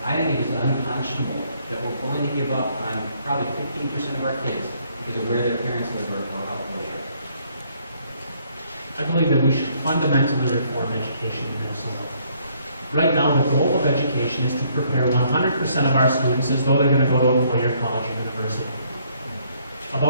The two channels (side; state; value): both; inverted; correlation -0.67